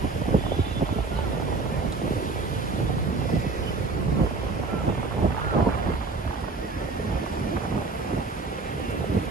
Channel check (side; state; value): left; quieter; 3.9 dB